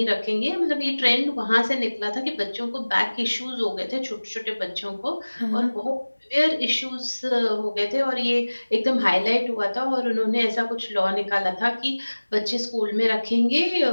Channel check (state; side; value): inverted; both; correlation -1.00